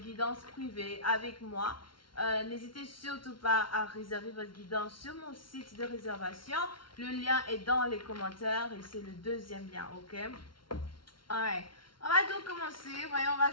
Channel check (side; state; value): right; late; 0.73 ms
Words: guidance privée avec moi, n'hésitez surtout pas à réserver votre guidance sur mon site de réservation. Le lien est dans les commentaires et c'est le deuxième lien, ok? Alright. On va donc commencer. Voyons voir